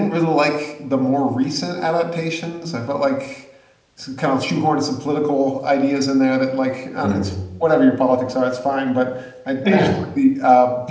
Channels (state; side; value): identical; both; correlation 1.00